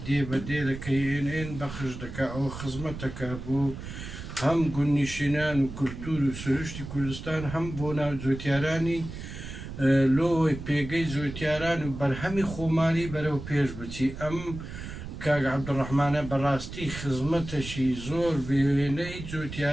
دێبەدێ لە KNN بەخش دەکا ئەوە خزمەتەکە بۆ هەم گوندنشینان و کولتور و سروشتی کوردستان هەم بۆ ناو جوتیارانی لۆی پێگەی جوتیاران و بەرهەمی خۆمانی بەرەو پێش بچی ئەم کاک عەبدوڕەحمانە بەڕاستی خزمەتەشی زۆر بێوێنەی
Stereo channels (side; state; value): right; noise; rumble, 10 dB below the sound